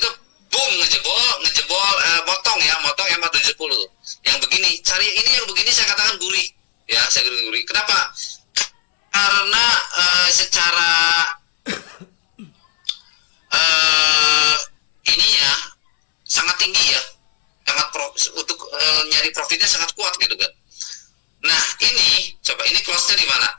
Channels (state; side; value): silent; right; 67 dB below the other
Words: boom ngejebol motong EMA 70 tuh. Yang begini, cari ini yang begini saya katakan gurih. Ya, saya gurih. Kenapa? Karena secara ininya sangat tinggi ya, untuk nyari profitnya sangat kuat gitu kan. Nah ini coba, ini close-nya di mana?